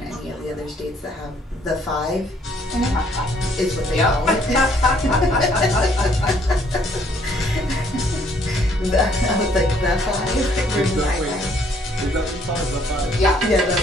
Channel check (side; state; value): both; normal; correlation 0.64